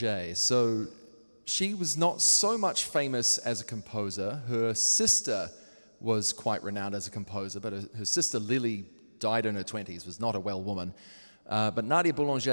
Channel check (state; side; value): inverted; both; correlation -1.00